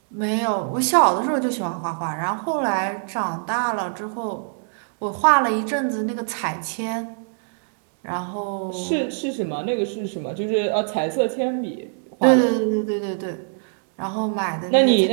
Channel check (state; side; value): silent; left; digital silence